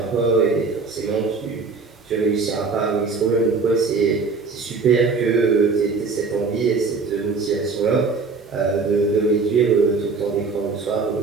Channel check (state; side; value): quieter; left; 4.5 dB